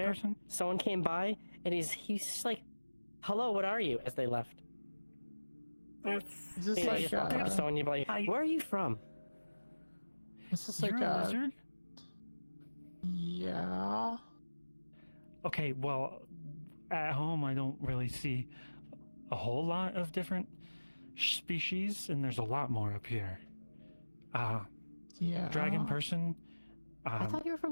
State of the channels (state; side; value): inverted; both; correlation -1.00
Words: person? someone came by and he's just like, "Hello, what are you?" As they left. That's Is this You know, like you just walk up to someone, you're like, "Where are you from?" Is this You're like a lizard? Yeah. Okay, well, at home I don't really see a whole lot of different species, and there's a lot more up here. Yeah. Dragon person. I thought you were